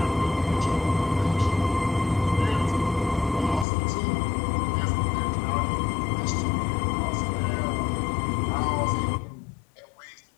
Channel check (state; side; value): drops out; right; at 3.7 s